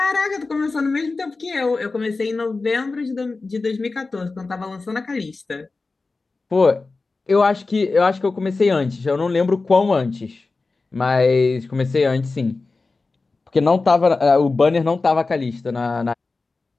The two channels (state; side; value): quieter; right; 3.8 dB